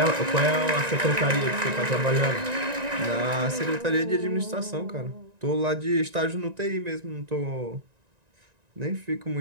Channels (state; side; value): late; left; 1.9 ms